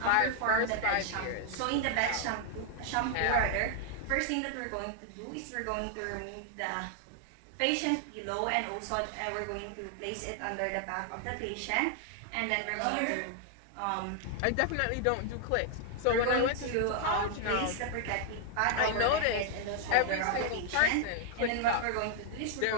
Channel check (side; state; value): both; different; correlation 0.00